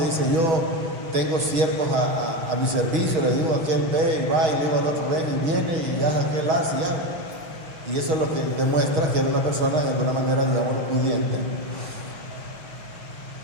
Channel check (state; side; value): late; left; 6.1 ms